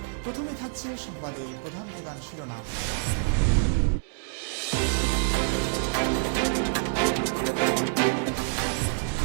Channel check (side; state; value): left; silent; digital silence